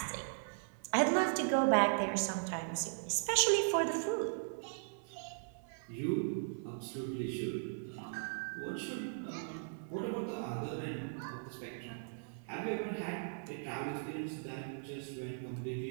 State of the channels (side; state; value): left; silent; 52 dB below the other